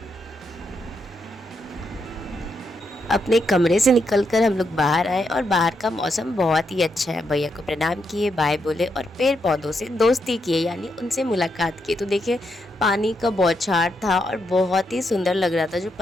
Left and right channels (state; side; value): normal; both; correlation 0.81